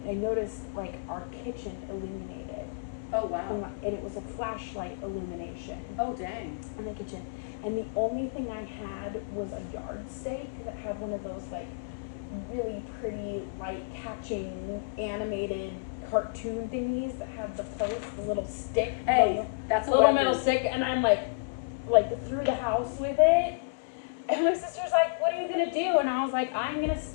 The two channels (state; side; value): quieter; right; 38.6 dB